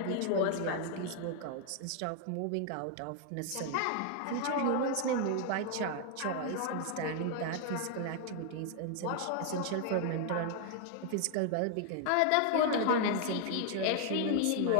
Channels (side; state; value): both; different; correlation 0.00